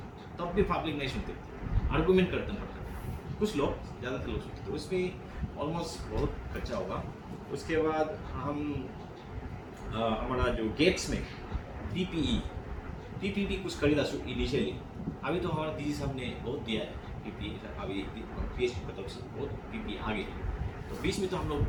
तब भी पब्लिक नहीं सुनते, आर्गूमेंट करते पड़ता, कुछ लोग ज़्यादातर लोग सुनते, तो उसमें ऑलमोस्ट बहुत खर्चा होगा। उसके बाद हम हमारा जो गेट्स में पीपीई भी कुछ खरीदा इनिशियली, अभी तो हमारा डीजी साहब ने बहुत दिया है पीपीई, अभी पीएचपी की तरफ से बहुत पीपीई आ गए, तो बीच में तो हम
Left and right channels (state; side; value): identical; both; correlation 1.00